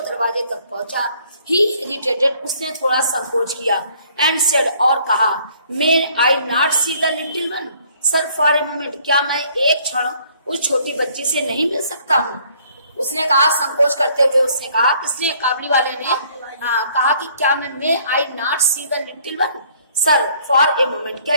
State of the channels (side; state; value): both; inverted; correlation -0.61